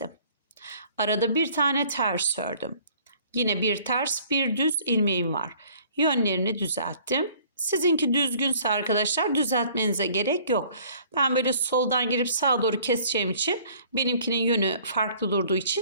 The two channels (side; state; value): both; inverted; correlation -0.55